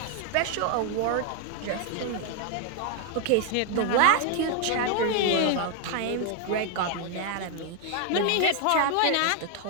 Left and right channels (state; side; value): different; both; correlation 0.00